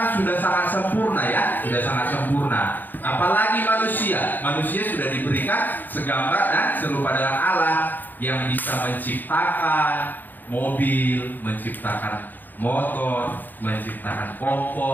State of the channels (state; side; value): late; right; 0.088 ms